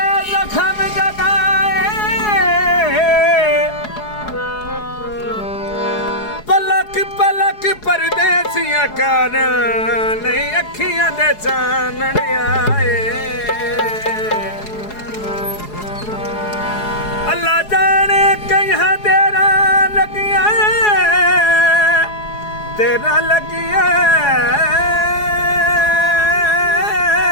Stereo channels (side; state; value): right; late; 4.8 ms